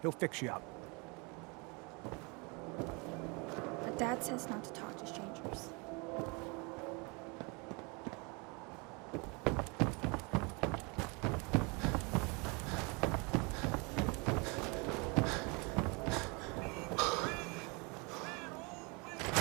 fix you up. But Dad says not to talk to strangers.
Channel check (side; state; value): left; quieter; 30.1 dB